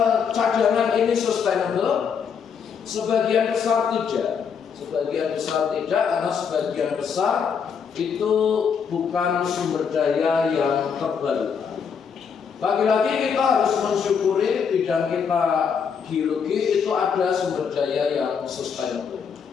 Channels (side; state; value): right; quieter; 6.6 dB